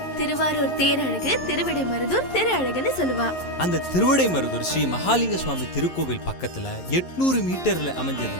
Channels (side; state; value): right; late; 11 ms